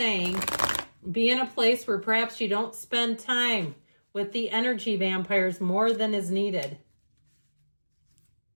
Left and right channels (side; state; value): both; inverted; correlation -1.00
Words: be in a place where perhaps you don't spend time with the energy vampires more than is needed.